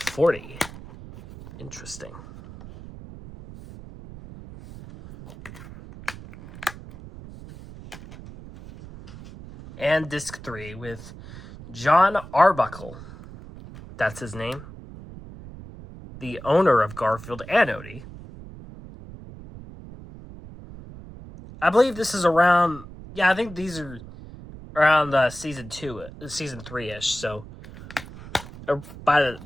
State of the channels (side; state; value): right; noise; rumble, 15 dB below the sound